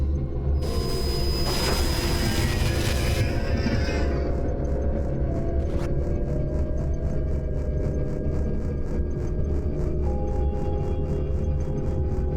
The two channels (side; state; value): both; identical; correlation 1.00